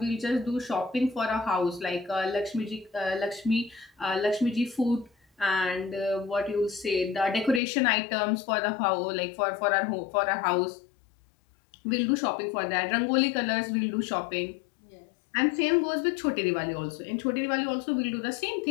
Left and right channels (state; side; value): drops out; right; at 7.6 s